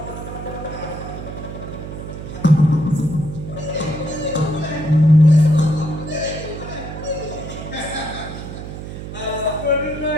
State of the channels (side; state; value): right; noise; hum, 9 dB below the sound